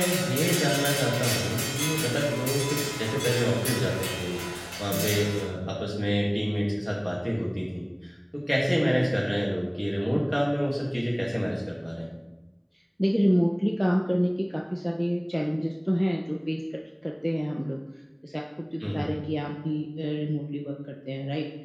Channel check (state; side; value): identical; both; correlation 1.00